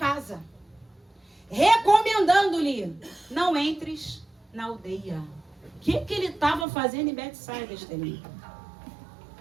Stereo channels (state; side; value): drops out; left; at 6.7 s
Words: recomendando-lhe: não entres na aldeia. O que ele estava fazendo em Betsaida, Estelinho?